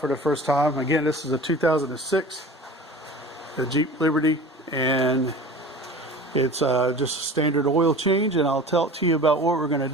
for the first time. Again, this is a 2006 the Jeep Liberty, and it's just a standard oil change, and I'll talk to you about what we're going to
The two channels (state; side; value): normal; both; correlation 0.39